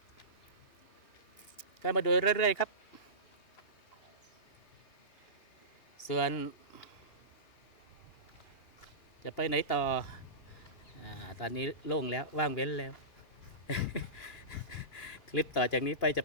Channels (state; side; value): late; right; 2.8 ms